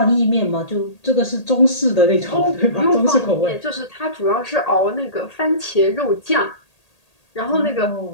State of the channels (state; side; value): late; right; 1.8 ms